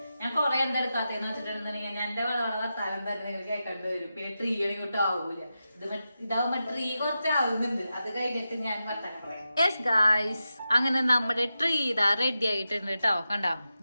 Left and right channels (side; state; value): both; inverted; correlation -0.90